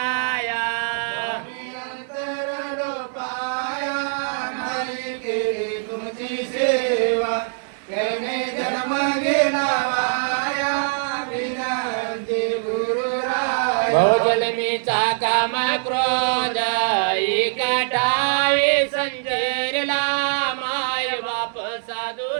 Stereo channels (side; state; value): left; silent; 64 dB below the other